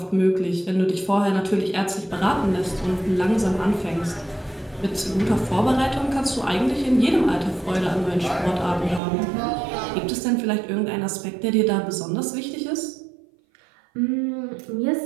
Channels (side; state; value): left; drops out; at 9.0 s